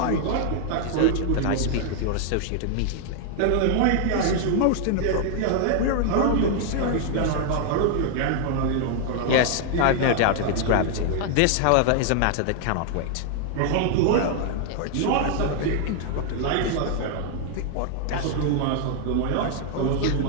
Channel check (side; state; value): both; different; correlation 0.00